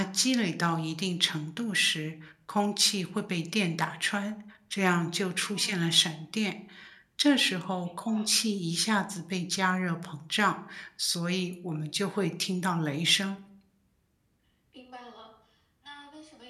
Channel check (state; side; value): identical; both; correlation 1.00